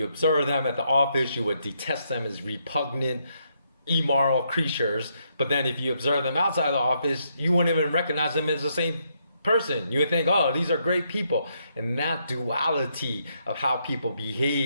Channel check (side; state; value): both; inverted; correlation -0.76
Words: observe them at the office, you would detest them as repugnant, immoral creatures. But then if you observe them outside of the office, you wouldn't even recognize them as the same person. You would think, oh, these are great people. And that duality of how people